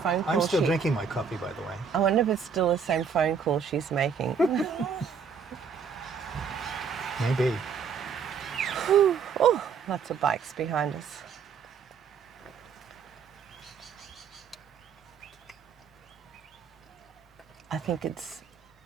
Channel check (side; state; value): left; quieter; 6.2 dB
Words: call. I'm still drinking my coffee, by the way. I wonder if it's still the same phone call she's making. Maybe. Oh, lots of bikes behind us. I think it's